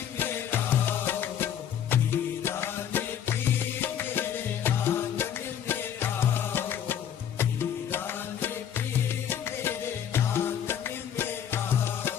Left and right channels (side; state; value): right; quieter; 9.3 dB